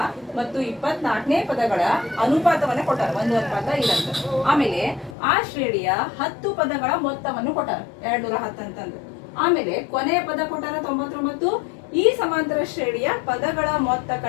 ಮತ್ತು 24ನೇ ಪದಗಳ ಅನುಪಾತವನ್ನ ಕೊಟ್ಟಾರ. 1:5 ಆಮೇಲೆ ಆ ಶ್ರೇಣಿಯ 10 ಪದಗಳ ಮೊತ್ತವನ್ನು ಕೊಟ್ಟಾರ 210 ಅಂತಂದು. ಆಮೇಲೆ ಕೊನೆಯ ಪದ ಕೊಟ್ಟಾರ 99. ಈ ಸಮಾಂತರ ಶ್ರೇಣಿಯ ಪದಗಳ ಮೊತ್ತ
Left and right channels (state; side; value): drops out; right; at 5.2 s